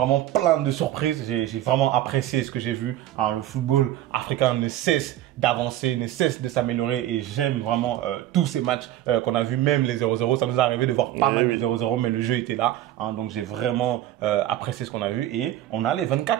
plein de surprises. J'ai vraiment apprécié ce que j'ai vu. Hein, le football africain ne cesse d'avancer, ne cesse de s'améliorer et j'aime vraiment tous ces matchs qu'on a vu, même les 0-0. Ça nous est arrivé de voir pas mal de 0-0, mais le jeu était là. Hein, donc j'ai vraiment apprécié ce qu'on a vu et on a les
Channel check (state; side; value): quieter; left; 13.1 dB